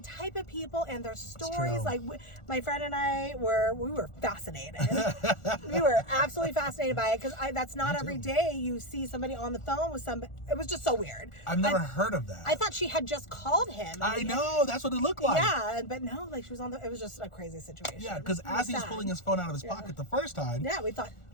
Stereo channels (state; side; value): late; right; 1.4 ms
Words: type of people and their stories. Like my friend and I were fascinated. We were absolutely fascinated by it because that's not every day you see somebody on the phone with somebody. It was just so weird. I've never heard of that. I thought she had just called him. I know, that's what it looked like. Yeah, but no, like she was on it was just a crazy situation. Yeah, because as he was pulling his phone out of his pocket the first time, we thought